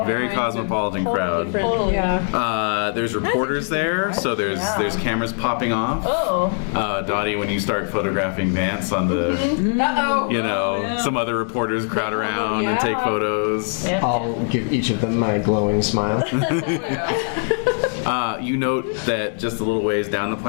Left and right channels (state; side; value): silent; right; 57 dB below the other